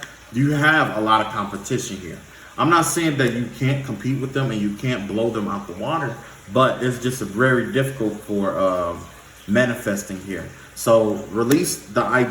you have a lot of competition here. I'm not saying that you can't compete with them and you can't blow them out the water, but it's just very difficult for manifesting here. So release the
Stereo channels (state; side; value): identical; both; correlation 1.00